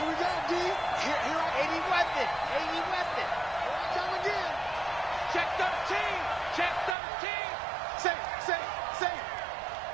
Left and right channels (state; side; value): drops out; left; at 7.0 s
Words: we go, D. Here, 80 weapon. 80 weapon. Come again. Check 13. Check 13. Safe.